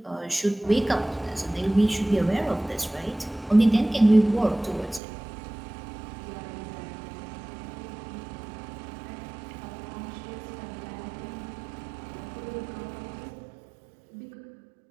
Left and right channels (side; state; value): left; drops out; at 5.0 s